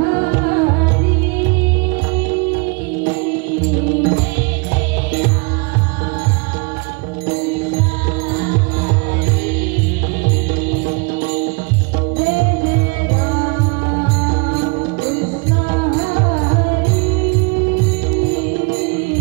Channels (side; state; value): left; quieter; 30.5 dB